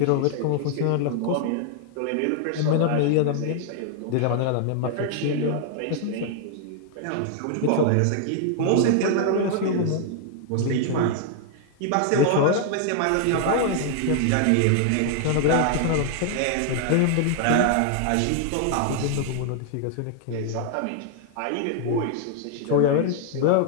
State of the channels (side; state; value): both; different; correlation 0.00